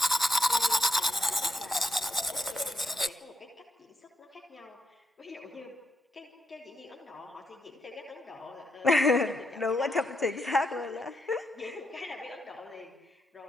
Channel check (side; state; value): both; normal; correlation 0.80